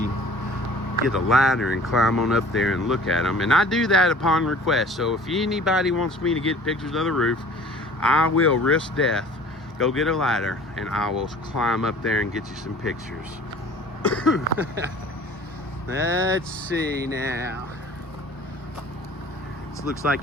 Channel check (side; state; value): both; normal; correlation 0.47